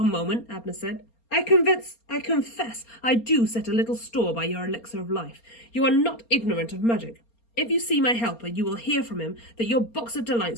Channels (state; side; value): late; right; 4.3 ms